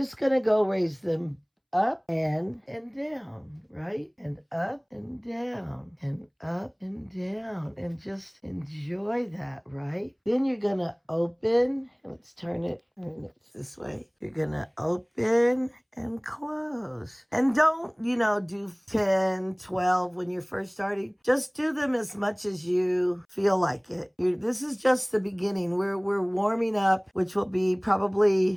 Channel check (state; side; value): identical; both; correlation 1.00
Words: going to go raise them up and down, right? And up and down and up and down, and just enjoy that, right? Then you're going to open. Let's turn it this way. You're going to open and close. And don't, do 10, 12 when you're first starting. Just do them as much as you feel like it. This is just the beginning. We're warming up, which will be